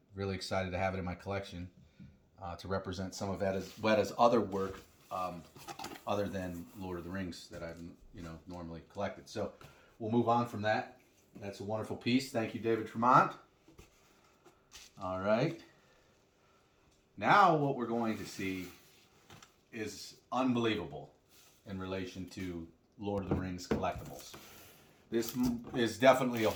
really excited to have it in my collection. To represent some of Weta's other work, other than Lord of the Rings that I've normally collected. So we'll move on from that. That's a wonderful piece. Thank you, David Tremont. All right. Now what we're going to see is unbelievable in relation to Lord of the Rings collectibles. This is definitely a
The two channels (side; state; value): both; identical; correlation 1.00